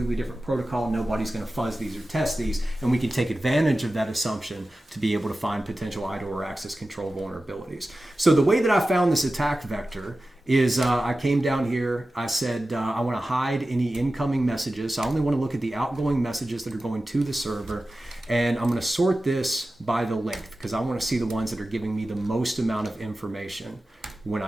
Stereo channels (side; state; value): both; normal; correlation 0.95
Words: different protocol. Nobody's going to fuzz these or test these, and we can take advantage of that assumption to be able to find potential IDOR access control vulnerabilities. So the way that I found this attack vector is I came down here, I said I want to hide any incoming messages. So I only want to look at the outgoing messages that are going to the server, and I'm going to sort this by the length because I want to see the ones that are giving me the most amount of information when